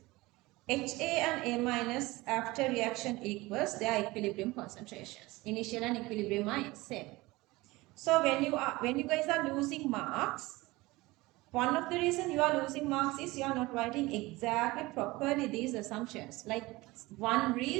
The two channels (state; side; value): quieter; left; 20.9 dB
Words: HA and A minus after reaction equals their equilibrium concentrations. Initial and equilibrium are same. So when you guys are losing marks, one of the reason you are losing marks is you are not writing exactly properly these assumptions. Like one